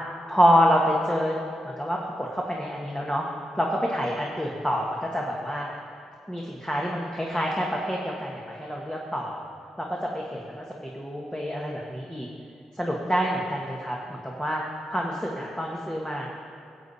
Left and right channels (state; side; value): normal; both; correlation 0.87